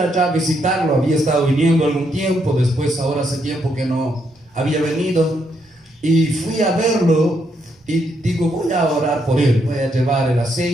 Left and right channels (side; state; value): both; normal; correlation 0.76